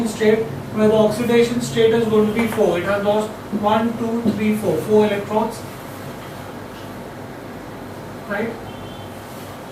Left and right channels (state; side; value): identical; both; correlation 1.00